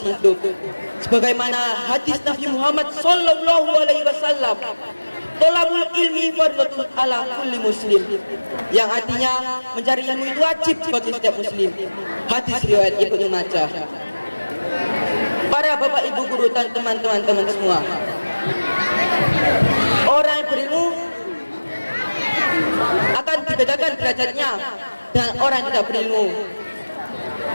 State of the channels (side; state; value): both; inverted; correlation -1.00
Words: hidup. Sebagaimana hadis Nabi Muhammad sallallahu alaihi wasallam, tolabul ilmi fardhatun ala kulli muslim, yang artinya mencari ilmu itu wajib bagi setiap muslim. Hadis riwayat Ibnu Majah. Para bapak, ibu guru dan teman-teman semua, orang yang berilmu akan dibedakan derajatnya dengan orang yang tidak berilmu.